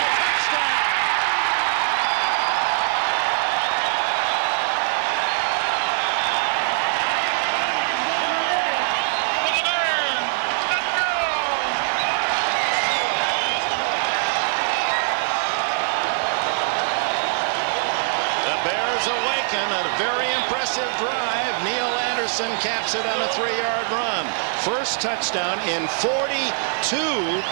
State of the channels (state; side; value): silent; left; digital silence